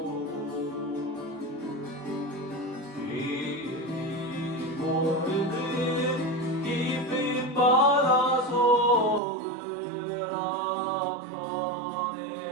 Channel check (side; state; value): left; drops out; at 9.2 s